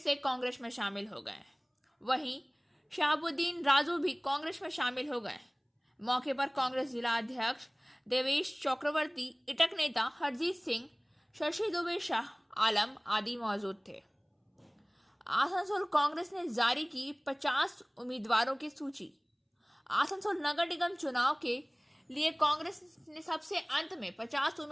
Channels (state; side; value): identical; both; correlation 1.00